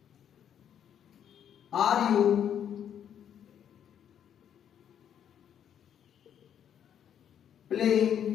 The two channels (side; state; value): right; quieter; 9.3 dB